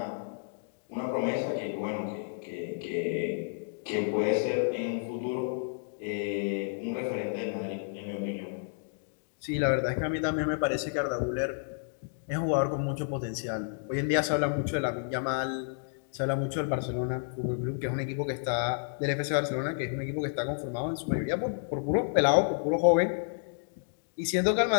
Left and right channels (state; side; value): silent; right; digital silence